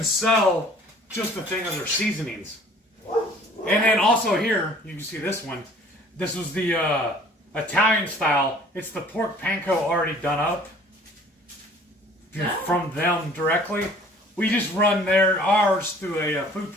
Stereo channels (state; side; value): normal; both; correlation 0.52